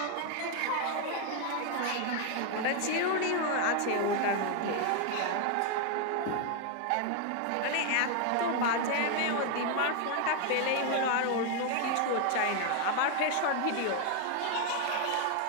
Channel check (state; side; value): different; both; correlation 0.01